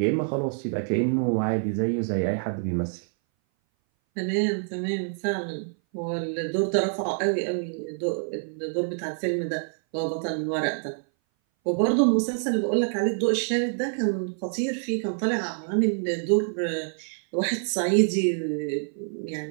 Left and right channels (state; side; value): silent; left; 59 dB below the other